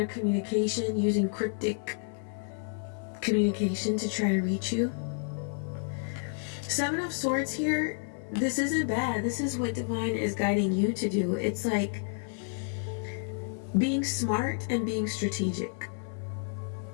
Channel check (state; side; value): silent; right; 57 dB below the other